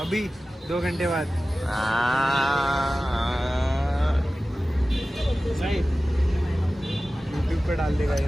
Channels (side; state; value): both; normal; correlation 0.96